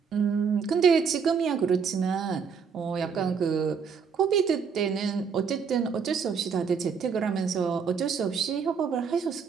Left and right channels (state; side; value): quieter; left; 6.2 dB